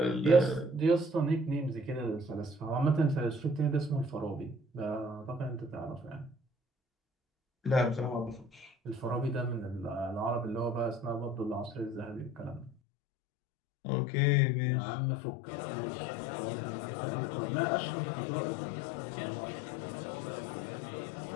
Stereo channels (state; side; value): drops out; right; at 12.8 s